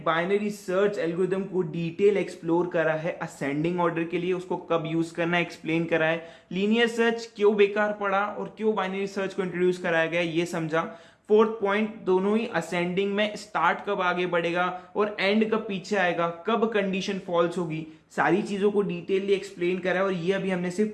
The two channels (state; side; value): identical; both; correlation 1.00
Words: binary search algorithm को डिटेल एक्सप्लोर करा है असेंडिंग ऑर्डर के लिए, उसको कब यूज करना है एक्सप्लेन करा है, लीनियर सर्च क्यों बेकार पड़ा और क्यों बाइनरी सर्च को इंट्रोड्यूस कराया गया ये समझा। फोर्थ पॉइंट दोनों ही असेंडिंग में स्टार्ट कब आगे बढ़ेगा और एंड कब पीछे आएगा, कब कंडीशन फॉल्स होगी, सारी चीजों को डिटेलली एक्सप्लेन करा है। और ये अभी हमने सिर्फ